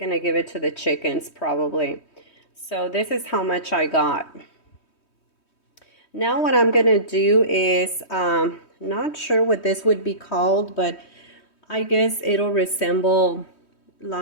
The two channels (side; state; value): right; late; 3.1 ms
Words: give it to the chickens probably. So this is how much I got. Now what I'm gonna do is, not sure what this would be called, but I guess it'll resemble